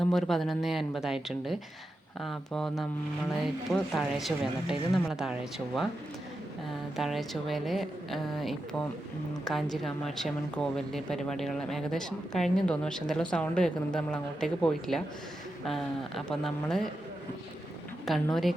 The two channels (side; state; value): both; normal; correlation 0.88